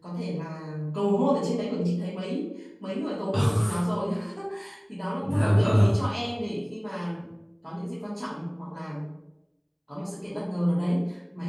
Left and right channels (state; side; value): identical; both; correlation 1.00